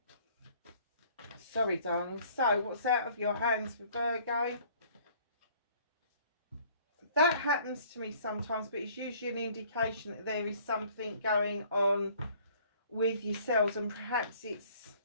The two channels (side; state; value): both; inverted; correlation -0.56